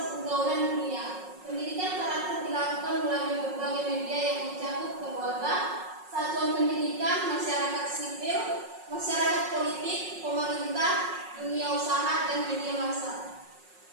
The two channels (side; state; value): left; late; 5.5 ms